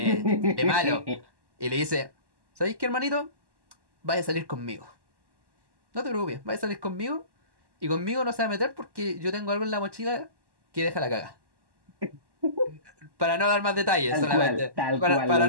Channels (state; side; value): late; left; 1.1 ms